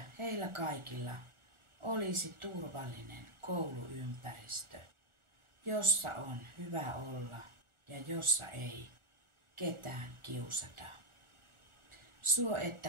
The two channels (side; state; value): left; late; 1.4 ms